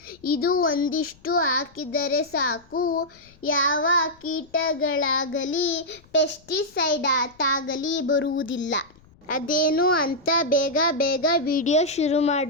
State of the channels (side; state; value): left; noise; rumble, 29 dB below the sound